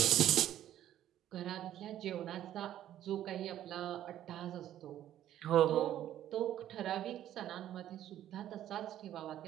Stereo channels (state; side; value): quieter; left; 11.9 dB